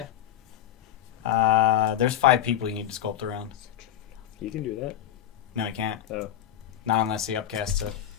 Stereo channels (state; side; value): quieter; right; 11.2 dB